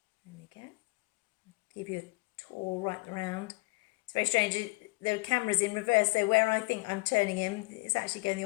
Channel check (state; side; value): quieter; right; 26.0 dB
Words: There we go. I'll give you a tour right around. It's very strange. The camera's in reverse, so where I think I'm turning him, it's actually going the